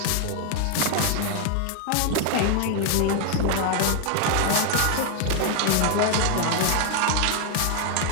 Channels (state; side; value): different; both; correlation 0.00